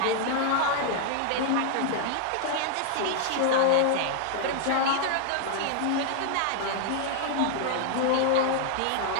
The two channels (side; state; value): both; different; correlation 0.00